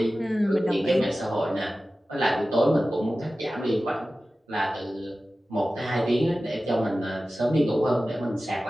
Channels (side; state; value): both; normal; correlation 0.95